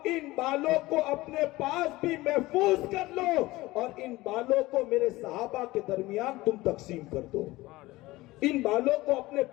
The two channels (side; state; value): right; quieter; 19.3 dB